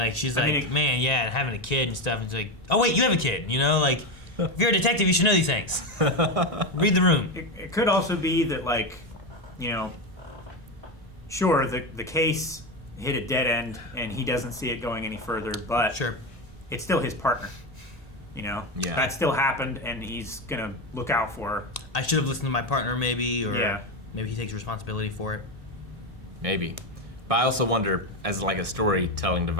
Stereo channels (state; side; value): normal; both; correlation 0.14